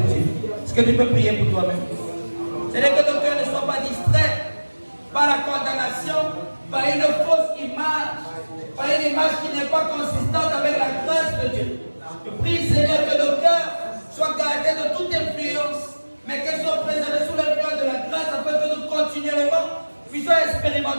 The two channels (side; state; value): both; inverted; correlation -1.00